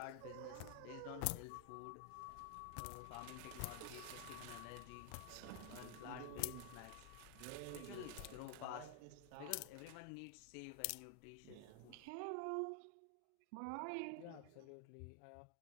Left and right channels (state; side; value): different; both; correlation 0.00